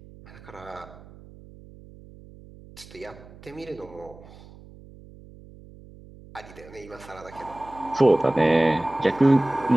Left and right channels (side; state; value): right; noise; hum, 20 dB below the sound